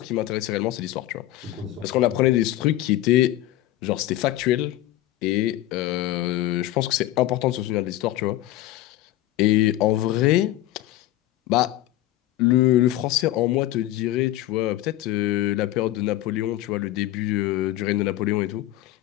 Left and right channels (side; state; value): right; quieter; 15.0 dB